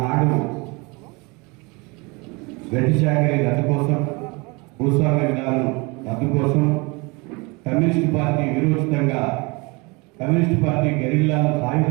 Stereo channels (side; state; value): left; quieter; 27.5 dB